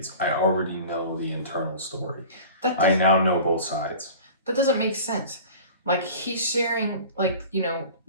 I already know the internal story. I now know both sides. That doesn't make sense. Like, he's sharing, like,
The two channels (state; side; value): inverted; both; correlation -0.39